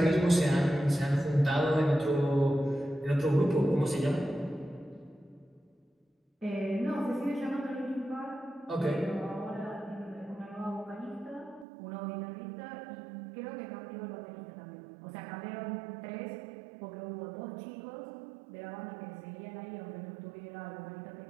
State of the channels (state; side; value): drops out; left; at 11.7 s